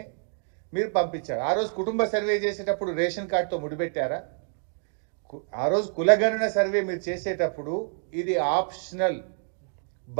మీరు పంపించారు. ఆ రోజు కుటుంబ సర్వే చేసేటప్పుడు రేషన్ కార్డుతో ముడిపెట్టారా? ఆ రోజు కులగణన సర్వే మీరు చేసేటప్పుడు ఇది ఆప్షనల్,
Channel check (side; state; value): left; silent; 60 dB below the other